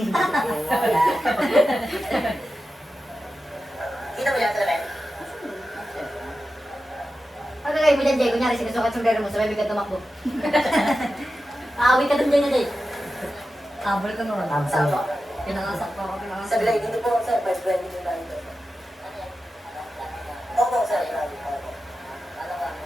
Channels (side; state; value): both; normal; correlation 0.92